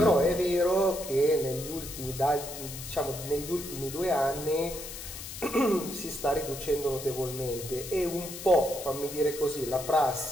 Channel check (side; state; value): left; noise; hiss, 10 dB below the sound